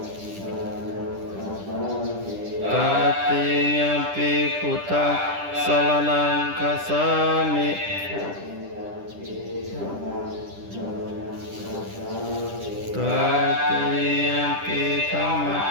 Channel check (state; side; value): late; left; 10 ms